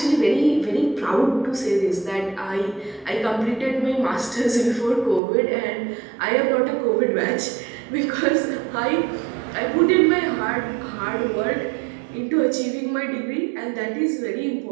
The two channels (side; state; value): left; drops out; at 5.2 s